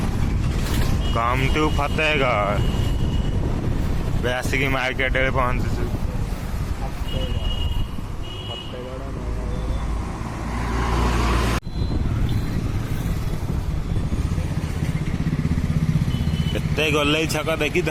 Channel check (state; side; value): identical; both; correlation 1.00